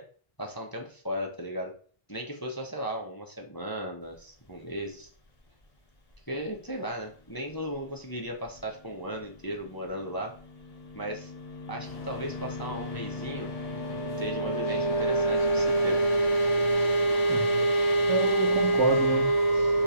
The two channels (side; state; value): right; late; 1.8 ms